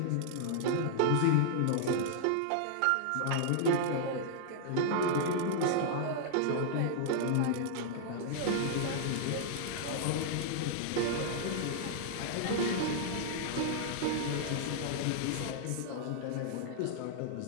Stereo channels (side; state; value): both; different; correlation -0.01